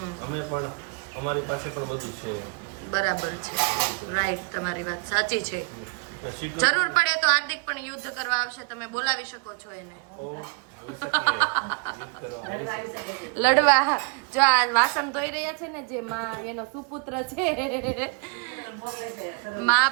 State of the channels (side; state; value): left; quieter; 33.1 dB